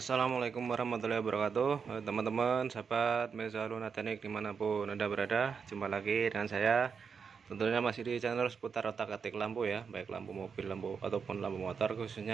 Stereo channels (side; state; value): left; quieter; 6.0 dB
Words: warahmatullahi wabarakatuh. Teman-teman, sahabat Mezalun Teknik dimanapun Anda berada, jumpa lagi dengan saya. Tentunya masih di channel seputar otak-atik lampu ya, baik lampu mobil, lampu ataupun lampu motor,